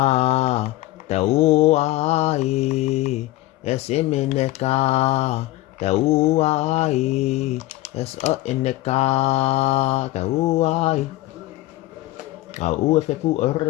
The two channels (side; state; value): right; quieter; 17.1 dB